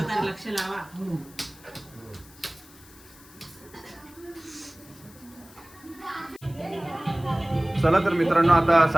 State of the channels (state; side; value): noise; left; hiss, 23 dB below the sound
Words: लक्ष लावा. चला तर मित्रांनो, आता